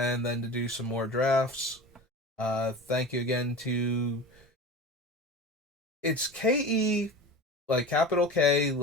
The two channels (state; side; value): normal; both; correlation 0.33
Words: then to do some more drafts. Thank you again to. It's KE, like capital K,